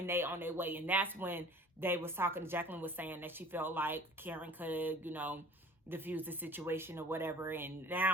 they on their way. And that's when they was talking. Jacqueline was saying that she felt like Karen could, you know, diffuse the situation or whatever. And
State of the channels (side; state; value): both; normal; correlation 0.45